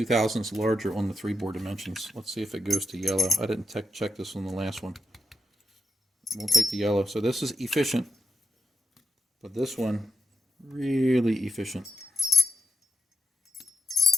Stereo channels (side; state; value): both; normal; correlation 0.83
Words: thousandths larger on the 3-bore dimensions. Let's see if it goes to yellow. I didn't check this on the last one. We'll take the yellow. So this is efficient, but this one really efficient.